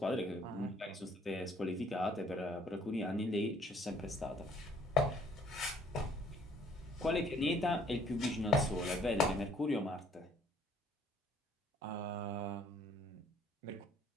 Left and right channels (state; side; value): normal; both; correlation 0.59